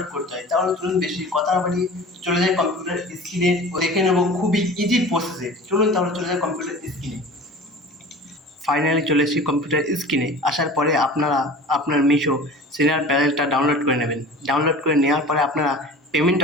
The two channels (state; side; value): normal; both; correlation 0.39